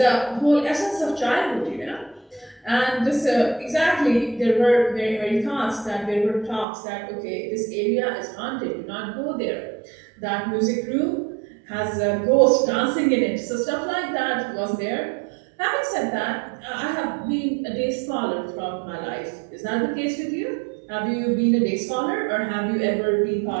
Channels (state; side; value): drops out; left; at 6.7 s